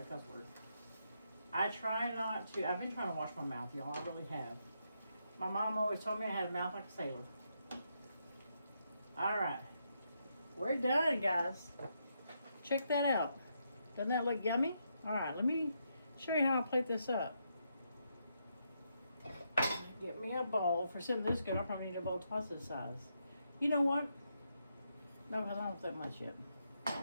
a cuss word. I try not to. I've been trying to wash my mouth, y'all. I really have. My mom always told me I had a mouth like a sailor. All right, we're done, guys. Check that out. Doesn't that look yummy? All right, let me show you how I plate this up. Get me a bowl. For something this good, I'll probably need a bowl twice this size. You know what? No, because I don't have that much yet.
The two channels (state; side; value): inverted; both; correlation -0.80